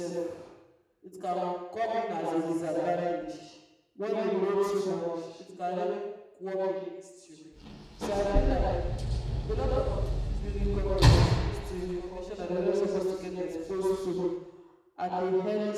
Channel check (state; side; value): identical; both; correlation 1.00